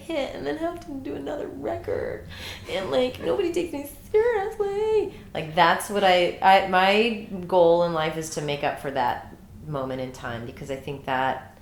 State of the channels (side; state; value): both; identical; correlation 1.00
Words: and then have to do another record, and like nobody takes me seriously. Like that's what my goal in life is to make up for that moment in time, because I think that